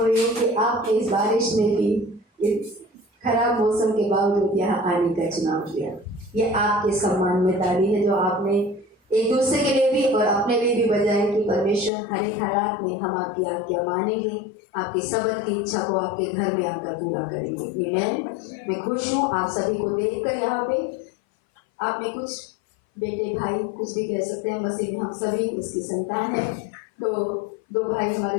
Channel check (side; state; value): right; drops out; at 11.9 s